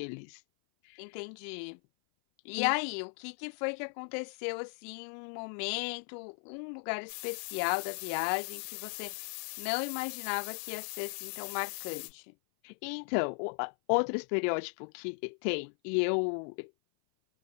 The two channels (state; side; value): silent; right; 53 dB below the other